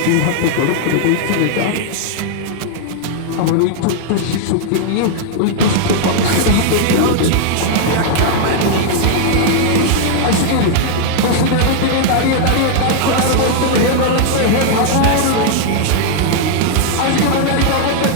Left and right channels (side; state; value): both; different; correlation -0.01